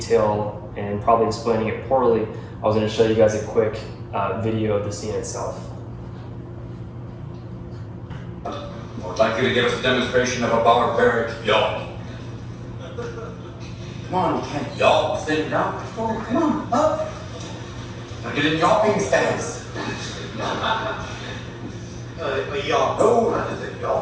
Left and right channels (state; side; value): identical; both; correlation 1.00